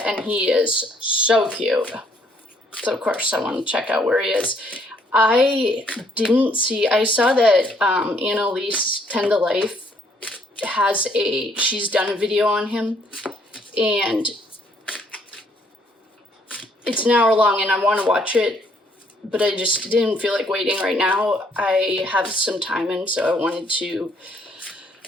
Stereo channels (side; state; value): both; normal; correlation 0.67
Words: and he is so cute. So of course I want to check out where he is. I saw that Annalise, 10 to Life, she's done a video on him, and it's an hour long and I want to watch it, but I just didn't feel like waiting right now. I have some time, and so I wanted to